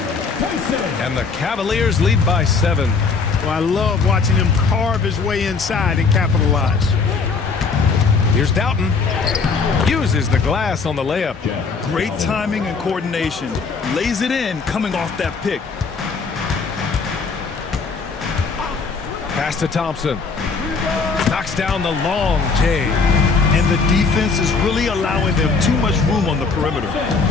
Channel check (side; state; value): right; quieter; 4.8 dB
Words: And the Cavaliers lead by 7. Well, I love watching him carve his way inside and capitalize. Here's Doughton. Uses the glass on the layup. Great timing and coordination. Lays it in coming off that pick. Pass to Thompson. Knocks down the long J. And the defense is really allowing them too much room on the perimeter.